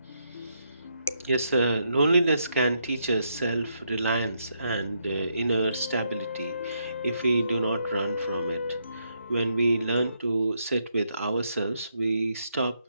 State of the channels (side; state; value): both; inverted; correlation -0.78